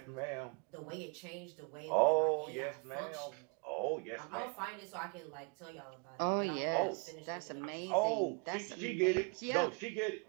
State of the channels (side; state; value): left; quieter; 36.1 dB